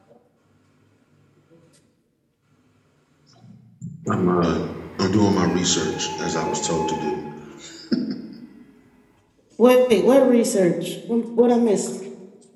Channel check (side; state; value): both; identical; correlation 1.00